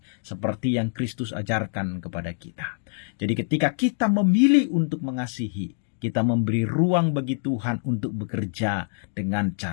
seperti yang Kristus ajarkan kepada kita. Jadi ketika kita memilih untuk mengasihi, kita memberi ruang bagi Tuhan untuk bekerja dengan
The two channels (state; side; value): silent; right; digital silence